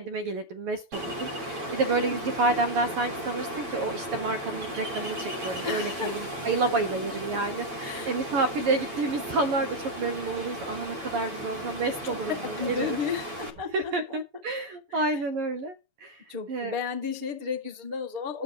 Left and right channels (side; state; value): left; late; 7.0 ms